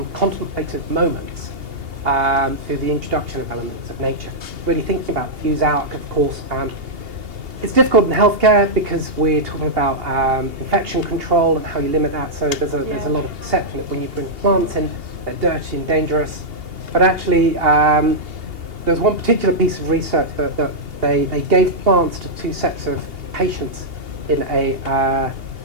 contemplative moments through the introduction of elements of nature. Really thinking about views out, of course. It's difficult in healthcare because we're talking about infection control and how you limit that. So there's a lot of perception that when you bring plants in, they're dirty and dangerous. But actually, there's one particular piece of research that they gave plants to two sets of patients in an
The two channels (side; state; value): left; late; 2.8 ms